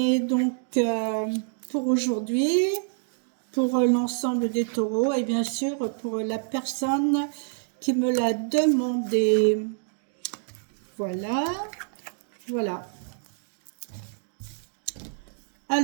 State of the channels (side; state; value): left; silent; digital silence